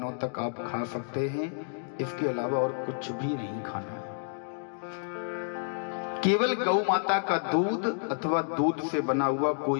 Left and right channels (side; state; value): right; silent; digital silence